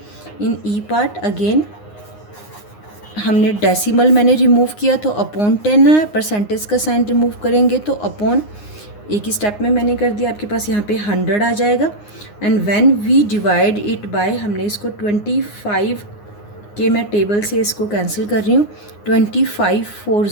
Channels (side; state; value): right; late; 9.7 ms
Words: In E part again हमने डेसिमल मैंने रिमूव किया तो अपॉन 10 है. परसेंटेज का साइन रिमूव करेंगे तो अपॉन, एक ही स्टेप में मैंने कर दिया, आपके पास यहाँ पे 100 आ जाएगा. And when we divide it by, हमने इसको 25 के, मैं टेबल से इसको कैंसिल कर रही हूँ. 25